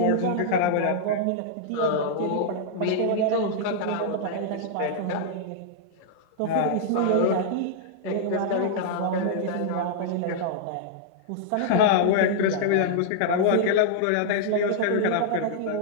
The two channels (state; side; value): different; both; correlation -0.01